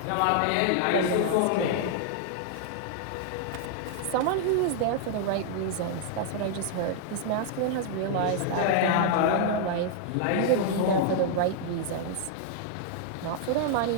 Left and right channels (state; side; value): different; both; correlation -0.01